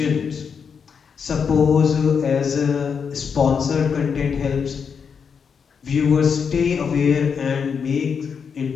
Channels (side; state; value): right; quieter; 6.4 dB